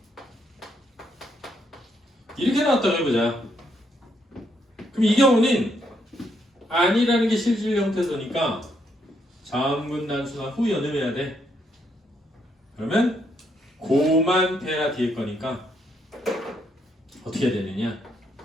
이렇게 나왔다고 해보자. 그럼 이 경우는 아니라는 게 실질 형태소니까 자음군 단수나 후 연음해야 돼. 그러면 고만 페라 뒤에 거니까 어떻게 해야 되느냐?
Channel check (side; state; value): both; normal; correlation 0.75